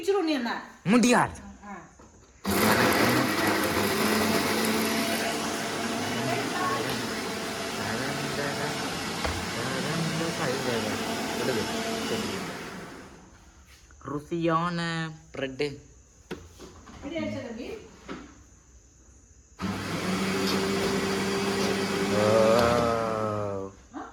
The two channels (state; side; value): identical; both; correlation 1.00